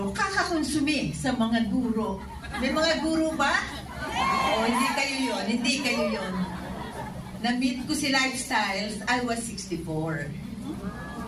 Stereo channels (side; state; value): both; identical; correlation 1.00